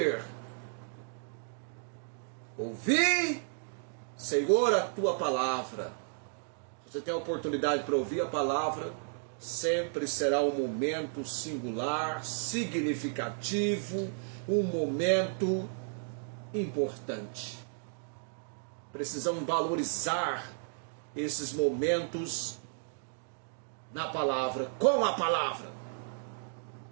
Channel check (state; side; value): silent; left; digital silence